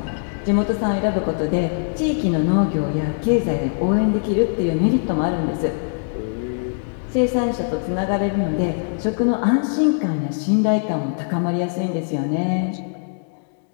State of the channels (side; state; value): right; silent; digital silence